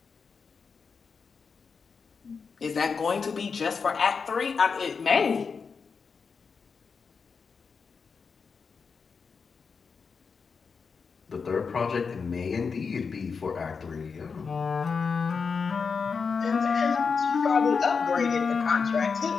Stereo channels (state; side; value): quieter; right; 5.4 dB